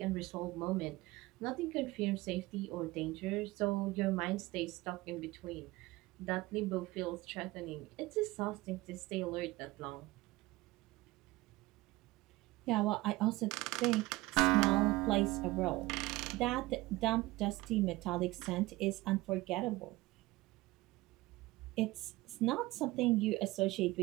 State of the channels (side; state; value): left; quieter; 19.7 dB